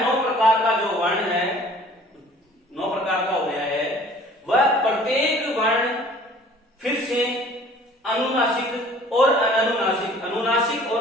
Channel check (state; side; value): normal; both; correlation 0.51